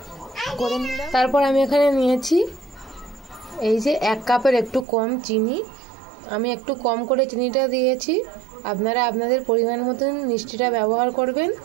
করে নিলাম। তারপর আমি এখানে নিয়েছি এই যে 1 কাপের একটু কম চিনি। আমি একটু কম করে চিনিটা দিয়েছি, আপনারা আপনাদের পরিমাণ মতন মিষ্টিটা ব্যবহার করবেন।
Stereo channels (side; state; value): left; drops out; at 4.9 s